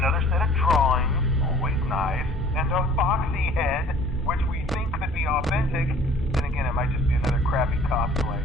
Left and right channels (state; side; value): normal; both; correlation 0.52